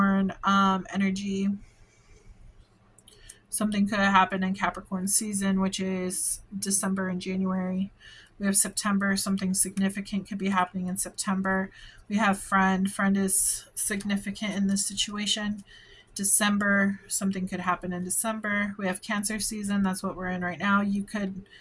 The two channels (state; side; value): identical; both; correlation 1.00